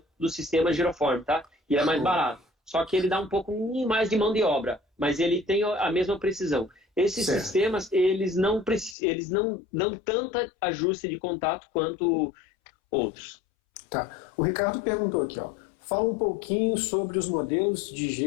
do sistema Giroform, tá? E é mais barato. Só que ele dá um pouco mais de mão de obra, mas ele tem a mesma precisão. Esses sistemas, eles não dão tanto ajuste de contato quanto outros. Tá. O Ricardo perguntou aqui, ó. Fala um pouquinho sobre os modelos de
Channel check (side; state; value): right; drops out; at 9.0 s